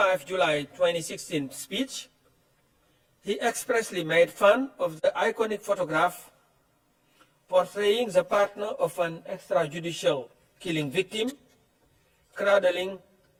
July 2016 speech, he expressly made fun of the iconic photograph portraying the partner of an extrajudicial killing victim cradling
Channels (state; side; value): identical; both; correlation 1.00